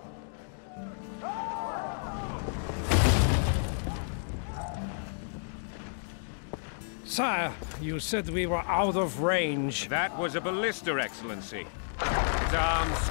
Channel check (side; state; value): right; silent; digital silence